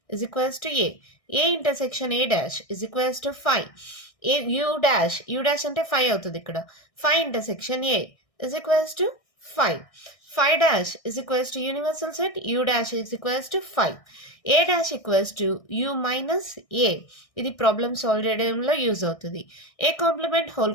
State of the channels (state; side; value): late; right; 1.6 ms